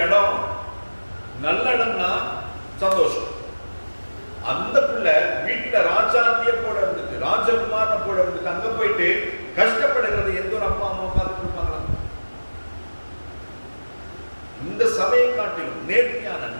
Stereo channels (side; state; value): both; inverted; correlation -1.00